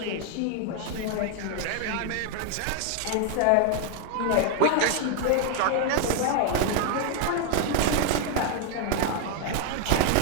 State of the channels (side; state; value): both; different; correlation 0.00